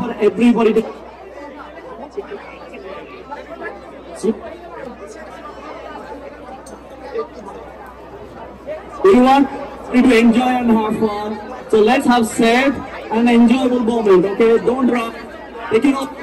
for everybody to we want you to enjoy and have fun. So let's have safe and enjoyable moment, okay? Don't run. Take it off.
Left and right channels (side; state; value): both; identical; correlation 1.00